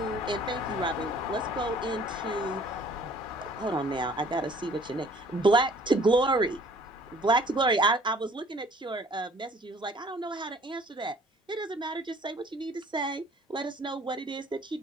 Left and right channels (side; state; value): both; normal; correlation 0.54